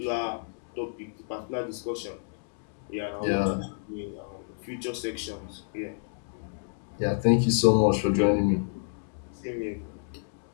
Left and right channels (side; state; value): right; silent; digital silence